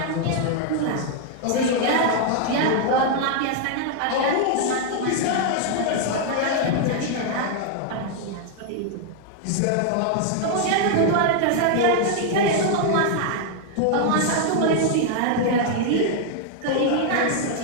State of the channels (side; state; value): both; different; correlation 0.00